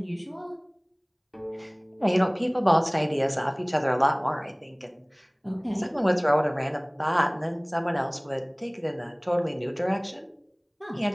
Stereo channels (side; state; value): both; identical; correlation 1.00